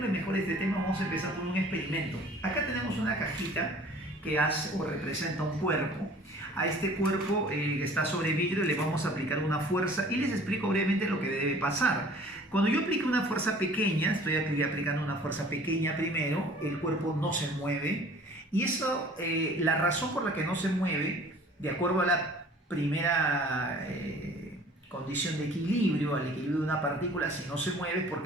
mejor este tema vamos a empezar por un experimento. Acá tenemos una cajita que hace o representa un cuerpo. A este cuerpo que está sobre vidrio le vamos a aplicar una fuerza y les explico brevemente lo que debe pasar. Cuando yo aplique una fuerza pequeña, estoy aplicando una fuerza pequeña primero, el cuerpo no se mueve y eso, la razón por la que no se mueve, de acuerdo a la primera condición de equilibrio, al equilibrio de una partícula, si no se mueve es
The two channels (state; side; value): normal; both; correlation 0.49